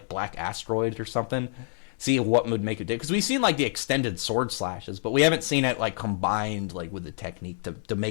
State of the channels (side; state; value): right; silent; 57 dB below the other